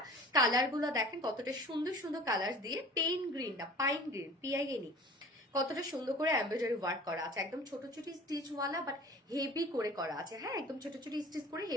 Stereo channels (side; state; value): both; normal; correlation 0.44